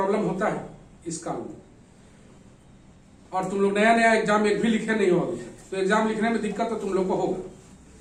होता है इस काल में, और तुम लोग नया एग्जाम एक भी लिखे नहीं हो अभी, तो एग्जाम लिखने में दिक्कत तो तुम लोग को होगा।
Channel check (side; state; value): both; identical; correlation 1.00